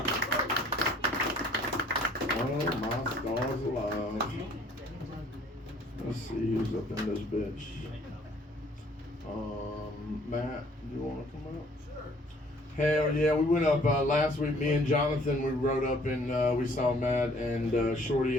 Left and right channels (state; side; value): normal; both; correlation 0.58